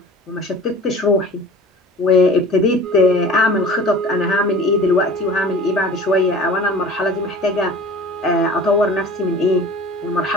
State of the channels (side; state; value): both; normal; correlation 0.42